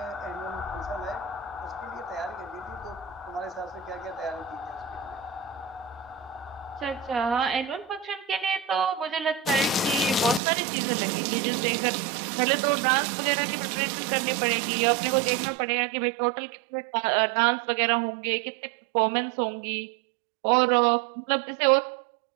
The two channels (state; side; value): drops out; left; at 10.4 s